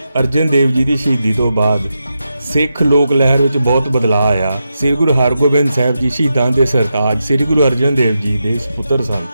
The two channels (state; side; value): inverted; both; correlation -0.88